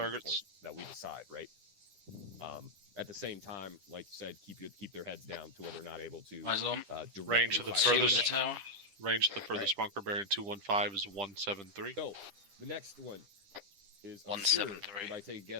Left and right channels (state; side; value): late; left; 10 ms